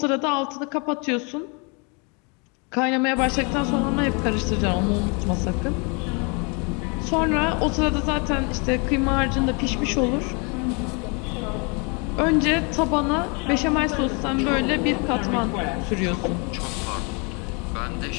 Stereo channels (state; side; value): quieter; right; 32.9 dB